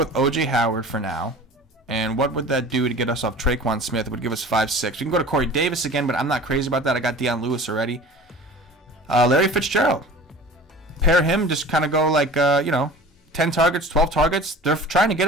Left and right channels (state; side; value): normal; both; correlation 0.41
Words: OJ Howard for now. And what would that do to get us off Traquan Smith? It would give us 5-6. We can go to Corey Davis again, but I'm not crazy about that. I got Deion Lewis already. Larry Fitzgerald. Pair him, just kind of go like 10 targets, 12 targets. They're trying to get